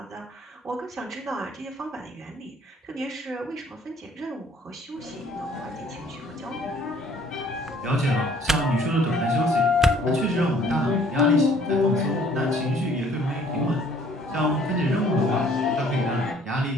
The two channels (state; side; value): normal; both; correlation 0.58